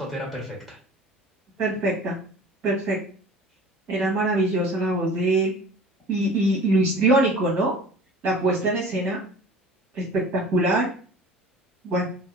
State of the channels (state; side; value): normal; both; correlation 0.43